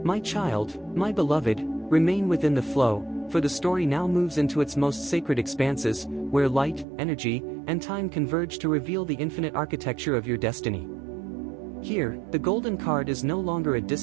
My child, my beloved, remain within the flow, for the story now moves into its most sacred expanses, where light, energy, and time converge to reveal the infinite architecture of your destiny. Here, the golden card is no longer a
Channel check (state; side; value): drops out; left; at 6.9 s